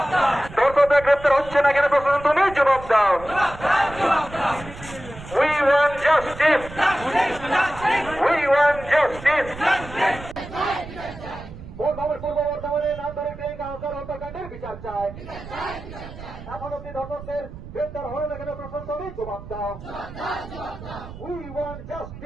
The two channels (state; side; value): noise; right; rumble, 14 dB below the sound